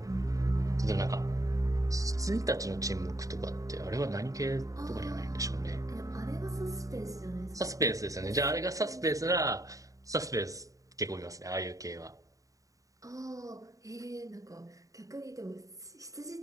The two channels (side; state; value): left; late; 0.16 ms